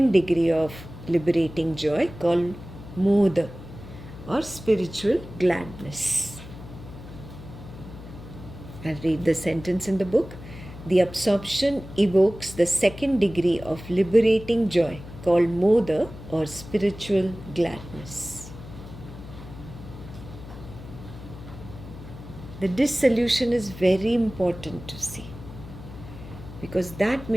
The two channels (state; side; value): noise; left; hum, 14 dB below the sound